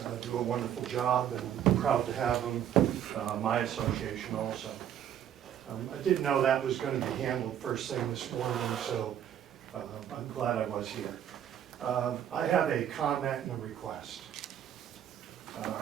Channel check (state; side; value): quieter; left; 10.1 dB